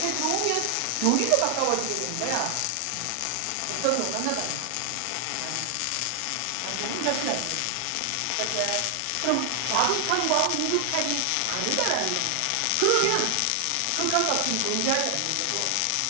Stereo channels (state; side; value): different; both; correlation 0.00